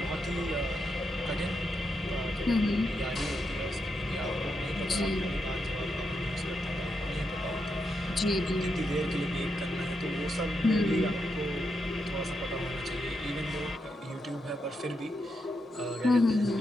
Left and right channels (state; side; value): normal; both; correlation 0.83